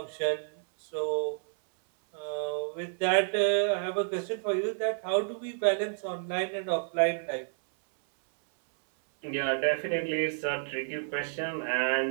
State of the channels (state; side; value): silent; left; 58 dB below the other